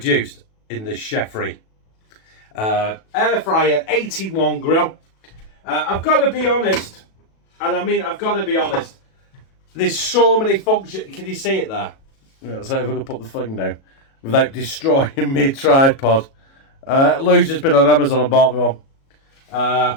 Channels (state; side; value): late; right; 37 ms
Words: in the Chefree Air-fryer 81 grill. I've got to be honest, and I mean I've got to be honest, there's so many functions. Can you see it there? Let's see if I can put the thing down without destroying my tripod. Lou's just been on Amazon and bought me one.